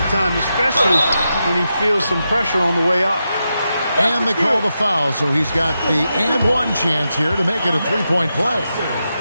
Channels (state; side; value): inverted; both; correlation -0.87